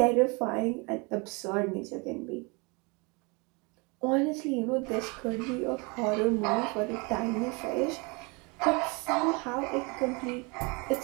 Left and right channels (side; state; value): left; quieter; 29.5 dB